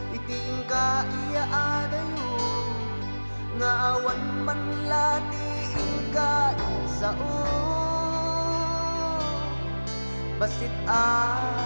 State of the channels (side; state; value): both; inverted; correlation -1.00